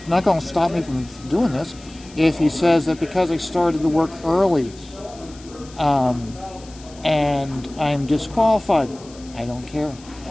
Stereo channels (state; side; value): noise; left; hiss, 22 dB below the sound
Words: not going to stop me from doing this. If he says that because I started the work early, and I'm disqualified, I don't care.